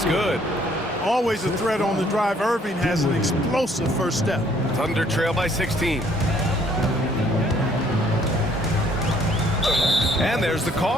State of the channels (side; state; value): both; normal; correlation 0.63